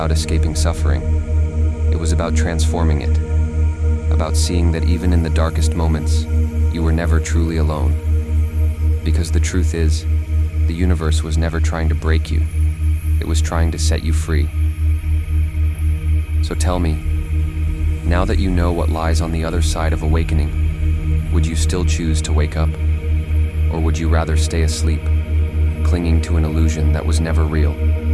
escaping suffering. It was about transforming it, about seeing that even in the darkest moments, you were never truly alone. Because the truth is, the universe was never trying to break you. It was trying to set you free. So tell me, now that you know what lies on the other side of awakening, would you still choose to wake up? Or would you rather stay asleep, clinging to an illusion that was never real?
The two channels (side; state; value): both; identical; correlation 1.00